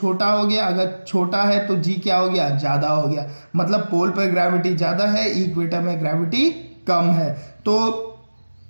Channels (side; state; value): both; inverted; correlation -1.00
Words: हो गया, अगर छोटा है तो जी क्या हो गया, ज्यादा हो गया। मतलब पोल पे ग्रेविटी ज्यादा है, इक्वेटर में ग्रेविटी कम है। तो